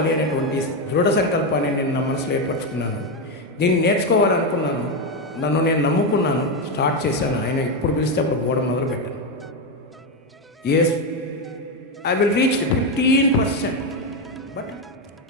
అనేటువంటి దృఢ సంకల్పాన్ని నేను నా మనసులో ఏర్పరచుకున్నాను. దీన్ని నేర్చుకోవాలనుకున్నాను, నన్ను నేను నమ్ముకున్నాను, స్టార్ట్ చేశాను. ఆయన ఇప్పుడు పిలిస్తే అప్పుడు పోవడం మొదలుపెట్టాను. I will reach 15%, but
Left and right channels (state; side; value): normal; both; correlation 0.08